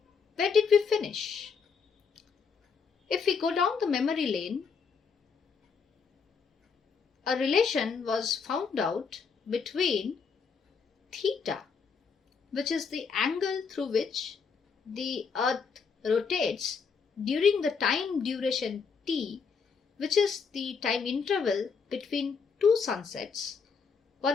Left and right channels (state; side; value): quieter; right; 5.7 dB